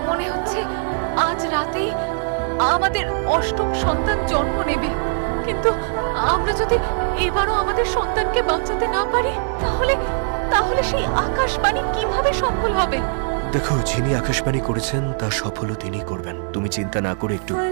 মনে হচ্ছে আজ রাতেই আমাদের অষ্টম সন্তান জন্ম নেবে। কিন্তু আমরা যদি এবারও আমাদের সন্তানকে বাঁচাতে না পারি, তাহলে তাহলে সেই আকাশবাণী কিভাবে সফল হবে? দেখো, যিনি আকাশবাণী করেছেন তা সফলও তিনি করবেন। তুমি চিন্তা না করে একটু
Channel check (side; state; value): left; silent; digital silence